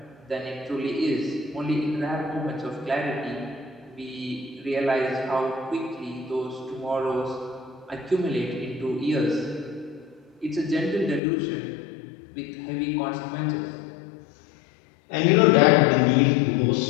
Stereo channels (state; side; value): drops out; right; at 11.2 s